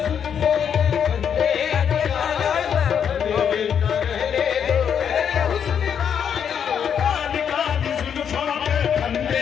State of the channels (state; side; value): quieter; right; 7.9 dB